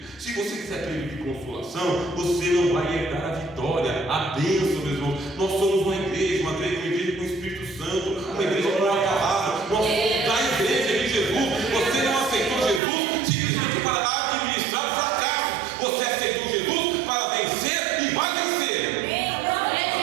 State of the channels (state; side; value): drops out; left; at 12.8 s